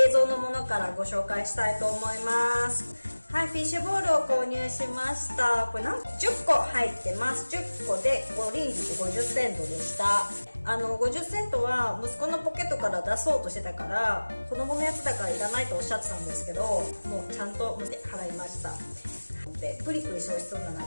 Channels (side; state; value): both; inverted; correlation -1.00